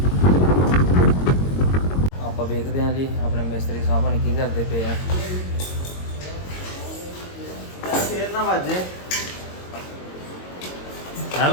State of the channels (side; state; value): right; late; 22 ms